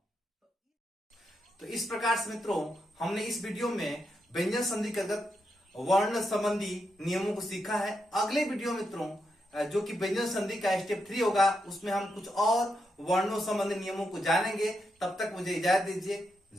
तो इस प्रकार से मित्रों हमने इस वीडियो में व्यंजन संधि के अंतर्गत वर्ण संबंधी नियमों को सीखा है। अगले वीडियो मित्रों जो कि व्यंजन संधि का स्टेप 3 होगा, उसमें हम कुछ और वर्णों संबंधी नियमों को जानेंगे। तब तक मुझे इजाजत दीजिए।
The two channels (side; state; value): both; normal; correlation 0.83